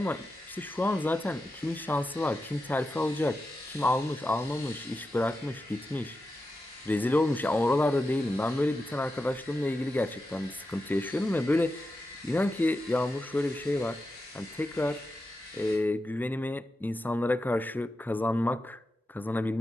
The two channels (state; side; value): normal; both; correlation 0.90